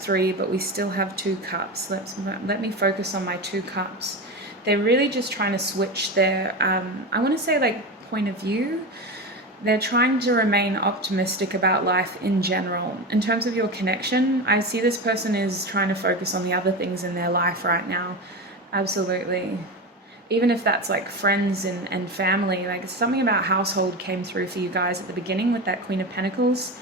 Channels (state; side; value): normal; both; correlation 0.22